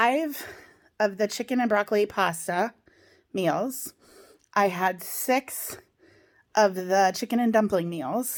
of the chicken and broccoli pasta meals. I had 6 of the chicken and dumpling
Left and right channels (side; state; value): both; identical; correlation 1.00